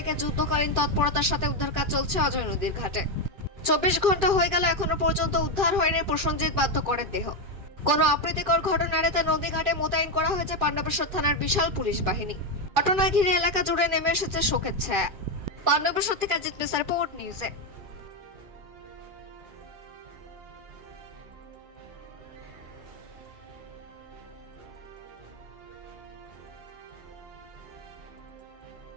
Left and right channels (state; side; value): late; left; 2.4 ms